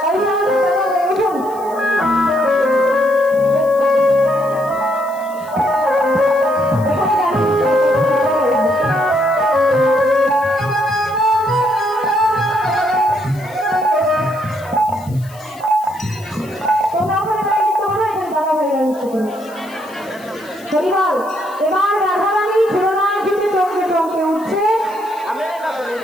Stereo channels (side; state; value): left; noise; hiss, 23 dB below the sound